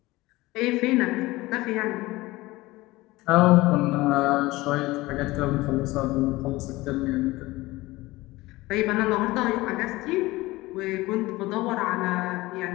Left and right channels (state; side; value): quieter; right; 19.8 dB